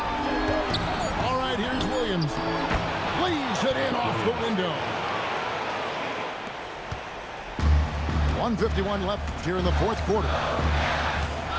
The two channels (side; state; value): both; identical; correlation 1.00